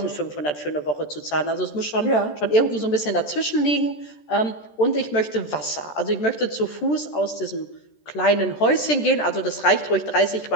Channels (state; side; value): late; right; 13 ms